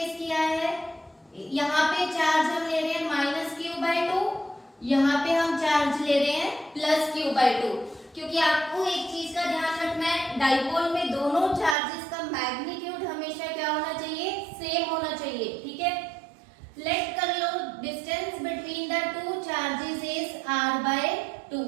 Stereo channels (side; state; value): left; drops out; at 11.8 s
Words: किया है, यहाँ पे चार्ज हम ले रहे हैं माइनस Q/2, यहाँ पे हम चार्ज ले रहे हैं प्लस Q/2, क्योंकि आपको एक चीज का ध्यान रखना है, डाइपोल में दोनों चार्जेस का मैग्नीट्यूड हमेशा क्या होना चाहिए, सेम होना चाहिए, ठीक है। लेट कर लो distance between the two charges is r/2,